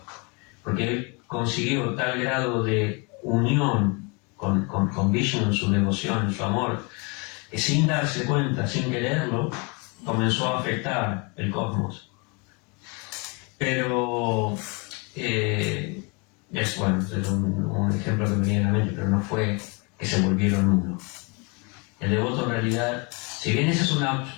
porque él consiguió tal grado de unión con Vishnu en su devoción, en su amor, que sin darse cuenta, sin quererlo, comenzó a afectar el cosmos. Pero es un ejemplo que me viene a la mente, pero no fue que se volvieron uno. El devoto en realidad, si bien esa es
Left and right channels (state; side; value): quieter; right; 31.3 dB